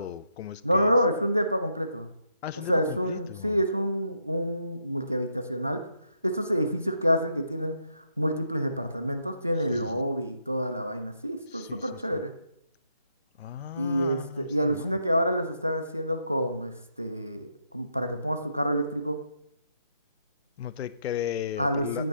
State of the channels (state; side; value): inverted; both; correlation -0.78